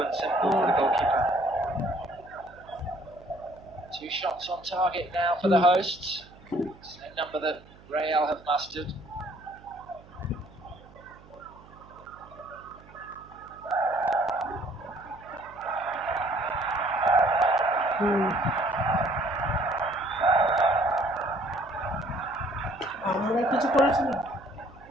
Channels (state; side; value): noise; right; hum, 23 dB below the sound